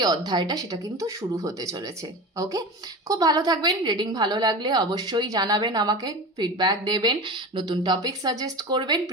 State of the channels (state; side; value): normal; both; correlation 0.29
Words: অধ্যায়টা সেটা কিন্তু শুরু হতে চলেছে। ওকে, খুব ভালো থাকবেন। রিডিং ভালো লাগলে অবশ্যই জানাবেন, আমাকে ফিডব্যাক দেবেন, নতুন টপিক সাজেস্ট করবেন,